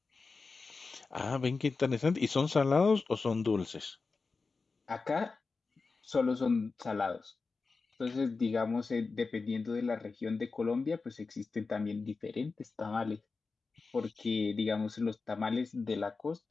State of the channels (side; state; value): right; quieter; 4.2 dB